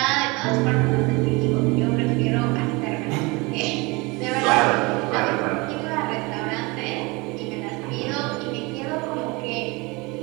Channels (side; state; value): left; quieter; 25.8 dB